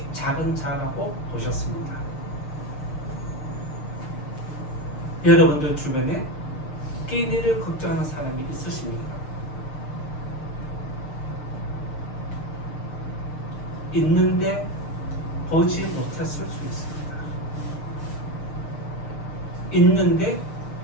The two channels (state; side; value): late; right; 6.6 ms